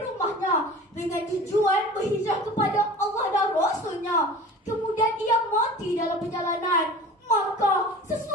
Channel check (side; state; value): both; normal; correlation 0.39